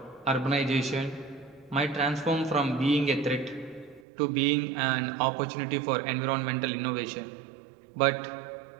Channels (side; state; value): left; drops out; at 4.0 s